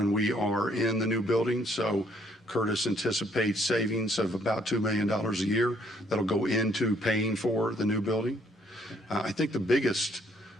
we are in the new building. So Curtis anticipates savings of about $2 million a year that'll go into paying for the new building. I think the biggest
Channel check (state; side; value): normal; both; correlation 0.66